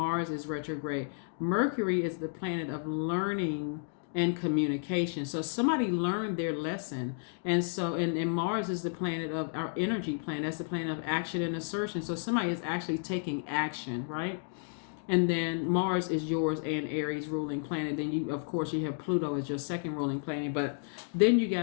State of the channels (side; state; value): right; silent; digital silence